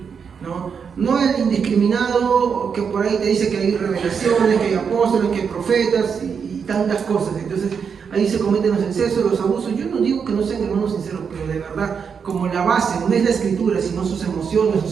¿no? No el indiscriminado que por ahí te dice que hay revelaciones, que hay apóstoles, que hay profetas y tantas cosas. Entonces ahí se cometen los excesos, los abusos. Yo no digo que no sean hermanos sinceros, pero de verdad, como la base no es la escritura, sino sus emociones, sus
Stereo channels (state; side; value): quieter; left; 6.5 dB